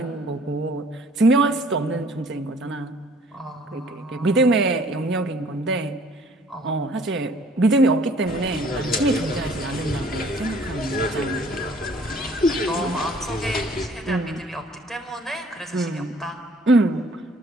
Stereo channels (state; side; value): normal; both; correlation 0.56